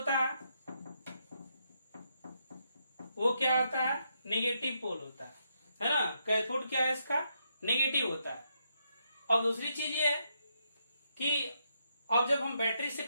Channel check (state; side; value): inverted; both; correlation -0.79